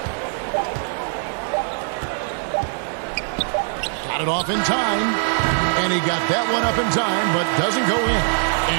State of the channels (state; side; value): silent; left; digital silence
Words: Got it off in time. And he got that one up in time, but doesn't go in.